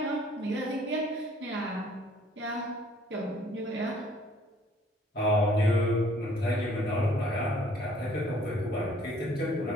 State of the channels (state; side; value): normal; both; correlation 0.59